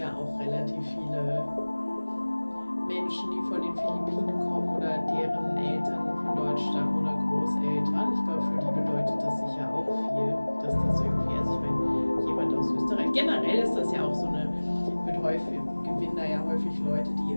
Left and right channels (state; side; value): inverted; both; correlation -1.00